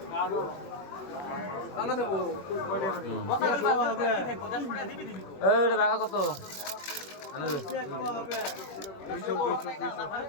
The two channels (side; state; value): right; late; 21 ms